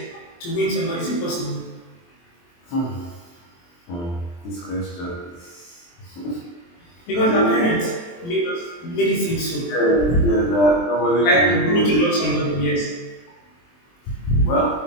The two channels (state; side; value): late; right; 23 ms